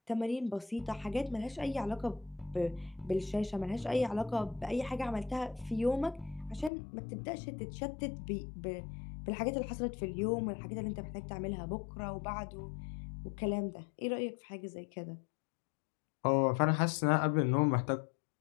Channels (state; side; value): drops out; right; at 6.7 s